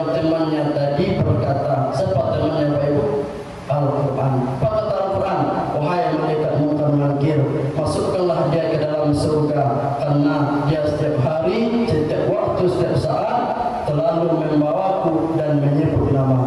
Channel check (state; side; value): identical; both; correlation 1.00